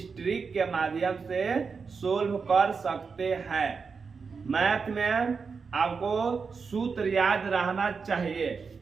ट्रिक के माध्यम से सोल्व कर सकते हैं। मैथ में आपको सूत्र याद रहना चाहिए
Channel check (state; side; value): quieter; left; 5.3 dB